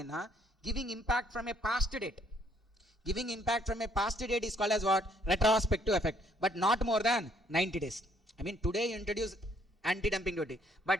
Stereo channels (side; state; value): both; normal; correlation 0.66